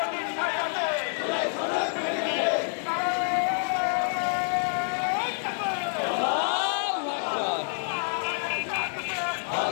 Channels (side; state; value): right; silent; 60 dB below the other